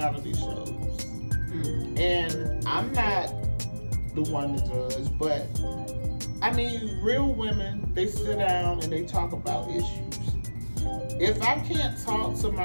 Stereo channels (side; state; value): both; inverted; correlation -1.00